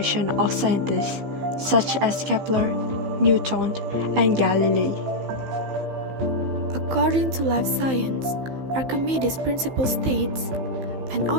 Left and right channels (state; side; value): late; left; 15 ms